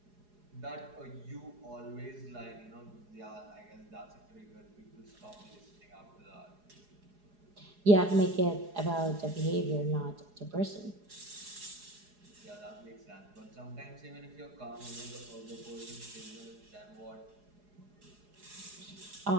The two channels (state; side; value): late; left; 4.8 ms